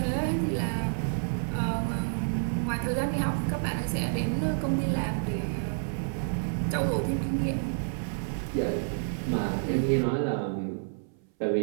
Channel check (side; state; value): left; silent; 58 dB below the other